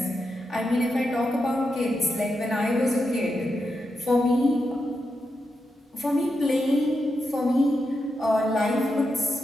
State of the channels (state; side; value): normal; both; correlation 0.86